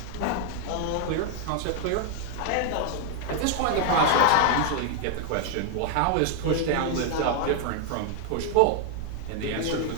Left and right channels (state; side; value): different; both; correlation 0.00